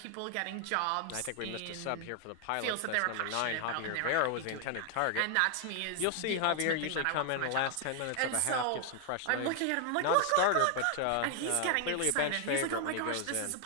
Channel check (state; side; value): different; both; correlation 0.00